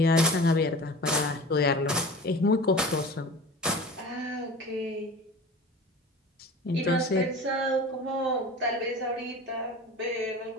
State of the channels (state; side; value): normal; both; correlation 0.37